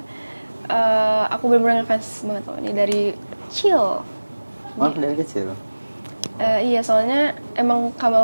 aku benar-benar ngefans banget sama dia dari kecil. Dari kecil? Iya, soalnya emang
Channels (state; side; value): inverted; both; correlation -1.00